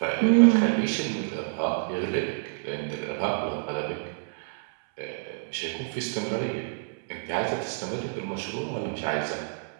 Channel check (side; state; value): left; silent; 59 dB below the other